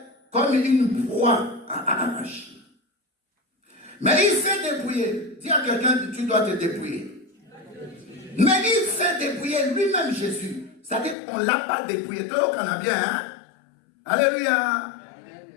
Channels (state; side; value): drops out; right; at 11.2 s